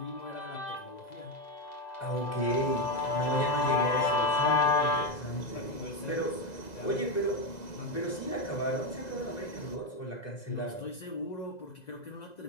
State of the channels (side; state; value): right; late; 2.0 ms